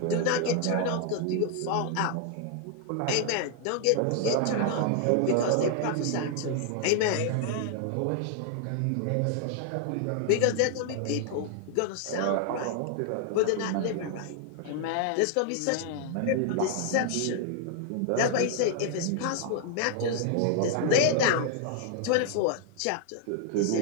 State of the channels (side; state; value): both; different; correlation 0.00